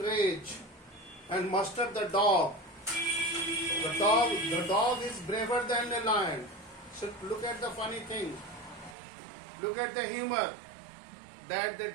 rage, and Mustard the dog. The dog is braver than a lion. So look at the funny thing. Look at the humor. That the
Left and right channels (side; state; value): left; drops out; at 9.0 s